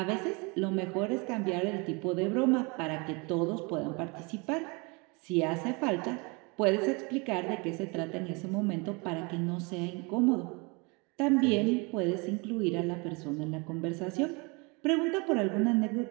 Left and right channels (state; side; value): quieter; left; 29.6 dB